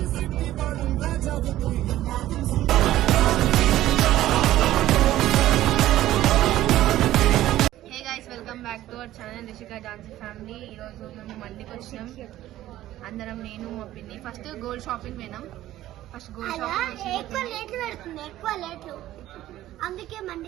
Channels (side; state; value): left; quieter; 14.3 dB